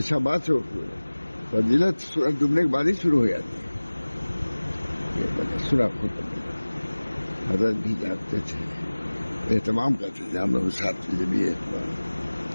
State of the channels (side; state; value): both; inverted; correlation -1.00